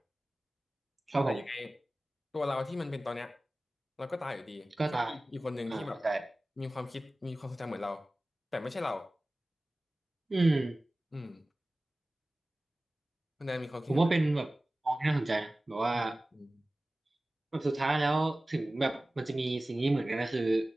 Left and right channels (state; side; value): normal; both; correlation 0.97